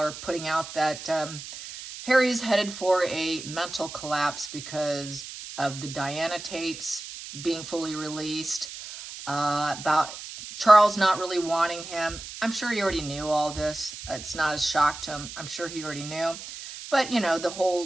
putting out that Harry's headed for a mental collapse because of the Diana tapes being fully released, about Charles not really wanting him. I'm sure he already knew all this. It's not a shock to him. I'm sure he already knew. But, the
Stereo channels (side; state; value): right; noise; hiss, 11 dB below the sound